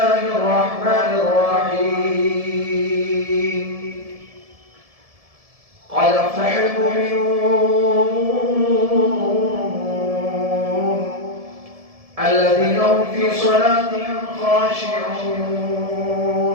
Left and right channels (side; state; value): left; late; 1.7 ms